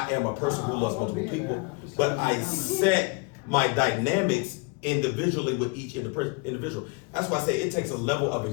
am a person who loves multiple people, but I set my dynamics individually with each individual. That's why I say it takes a level of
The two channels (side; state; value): right; quieter; 29.4 dB